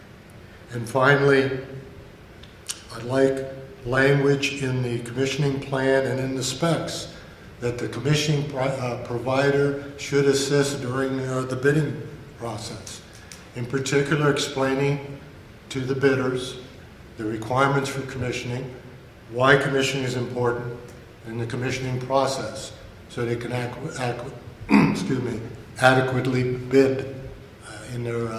And finally, I'd like language in the commissioning plan and in the specs that the commissioning provider should assist during the bidding process. In particular, explaining to the bidders the requirements for commissioning, why commissioning is important in the commissioning process, so they can adequately bid in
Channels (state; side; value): identical; both; correlation 1.00